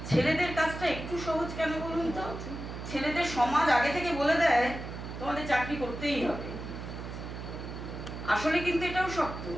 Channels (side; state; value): right; noise; hum, 8 dB below the sound